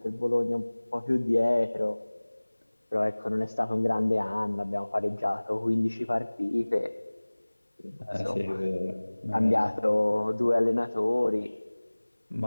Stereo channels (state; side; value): inverted; both; correlation -1.00